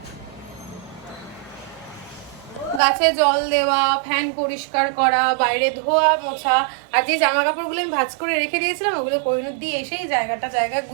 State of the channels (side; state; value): left; drops out; at 2.8 s